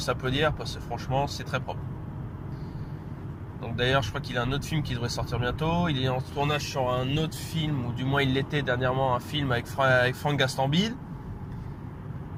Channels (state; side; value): identical; both; correlation 1.00